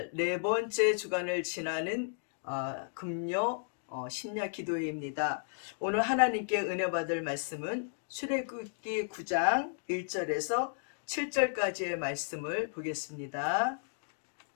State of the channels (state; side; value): silent; right; digital silence